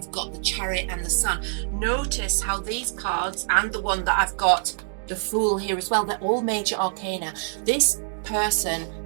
got the Chariot and the Sun. Notice how these cards, and the one that I've got, the Fool, here as well, they're all major arcana. This person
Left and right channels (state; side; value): silent; left; digital silence